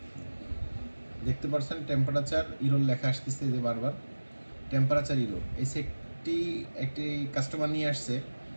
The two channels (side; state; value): both; inverted; correlation -1.00